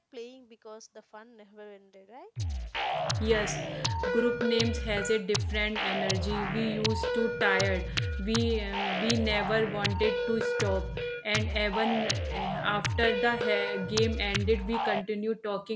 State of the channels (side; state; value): both; identical; correlation 1.00